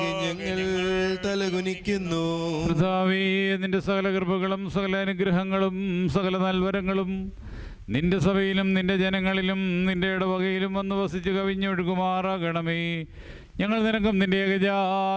ഞങ്ങൾ തലകുനിക്കുന്നു. കർത്താവേ, നിന്റെ സകല കൃപകളും സകല അനുഗ്രഹങ്ങളും സകല നൽവരങ്ങളും നിന്റെ സഭയിലും നിന്റെ ജനങ്ങളിലും നിന്റെ ഇടവകയിലും വന്ന് വസിച്ച് കവിഞ്ഞൊഴുകുമാറാകണമേ. ഞങ്ങൾ നിനക്കും നിന്റെ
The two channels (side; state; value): both; identical; correlation 1.00